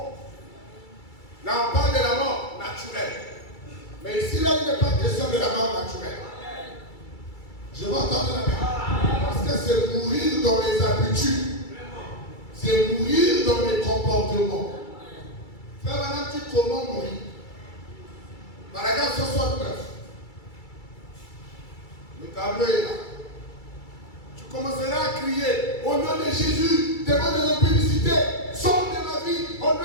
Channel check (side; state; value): right; late; 2.3 ms